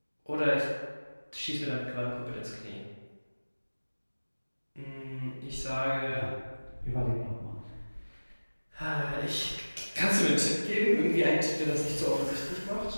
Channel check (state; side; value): inverted; both; correlation -1.00